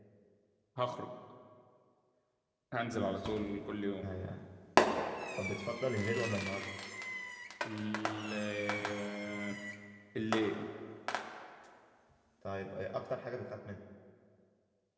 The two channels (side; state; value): both; identical; correlation 1.00